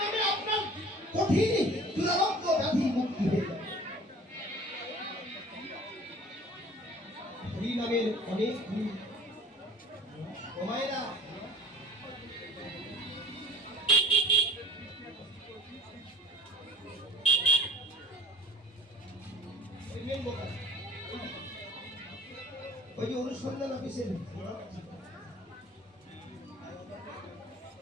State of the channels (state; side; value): normal; both; correlation 0.44